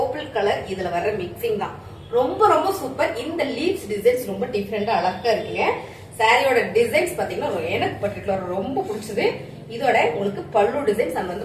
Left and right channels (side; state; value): both; identical; correlation 1.00